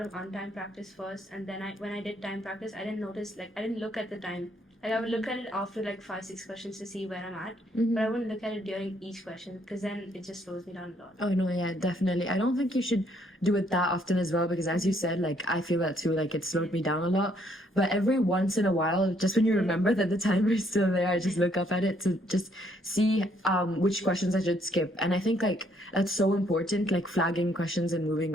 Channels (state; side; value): normal; both; correlation 0.68